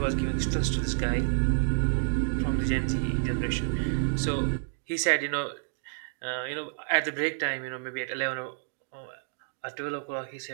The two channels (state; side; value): silent; left; digital silence